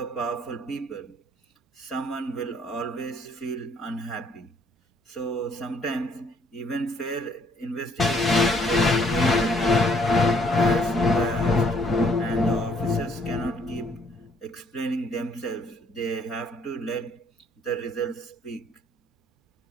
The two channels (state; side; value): normal; both; correlation 0.64